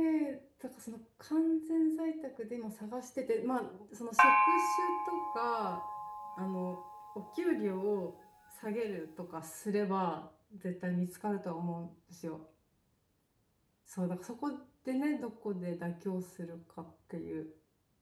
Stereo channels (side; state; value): both; identical; correlation 1.00